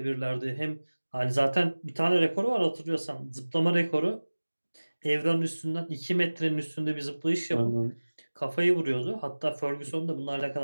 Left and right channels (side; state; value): both; inverted; correlation -1.00